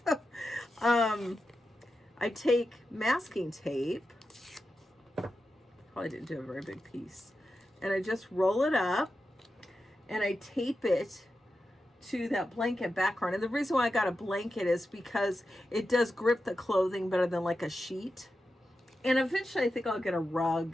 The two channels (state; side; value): normal; both; correlation 0.90